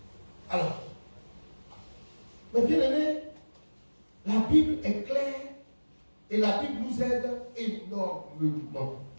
Alors, mes bien-aimés, la Bible est claire et la Bible nous aide énormément.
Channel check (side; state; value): both; inverted; correlation -1.00